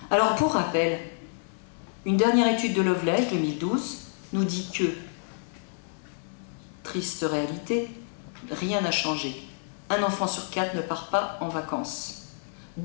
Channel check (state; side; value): silent; right; digital silence